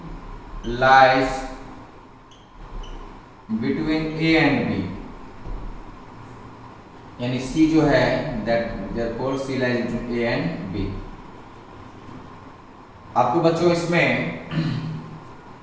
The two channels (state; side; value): identical; both; correlation 1.00